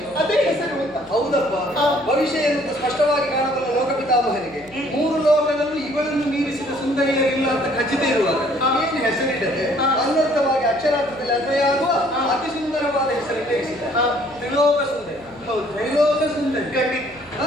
ಅದೇ ಹೆಸರು ಅಂತ. ಹೌದಪ್ಪ. ಆ. ಭವಿಷ್ಯ ಎನ್ನುವುದು ಸ್ಪಷ್ಟವಾಗಿ ಕಾಣಬಲ್ಲ ಲೋಕಪಿತಾಮಹನಿಗೆ 3 ಲೋಕದಲ್ಲೂ ಇವಳನ್ನು ಮೀರಿಸಿದ ಸುಂದರಿಯರಿಲ್ಲ ಅಂತ ಖಚಿತ ಇರುವಾಗ ಆ. ಏನು ಹೆಸರಿಡದೆ ಆ. ಅನ್ವರ್ಥವಾಗಿ ಅಕ್ಷರಾರ್ಥದಲ್ಲಿ ಅನ್ವಯಾಗುವ ಆ. ಅತಿ ಸುಂದರವಾದ ಹೆಸರನ್ನು ಇರಿಸಿದ. ಆ. ತ್ರಿಲೋಕ ಸುಂದರಿ. ಹೌದು. ತ್ರೈಲೋಕ ಸುಂದರಿ. ಖಂಡಿತ ಹಾ,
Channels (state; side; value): noise; right; hum, 25 dB below the sound